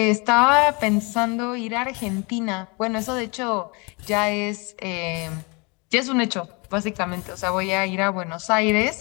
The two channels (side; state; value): right; quieter; 29.7 dB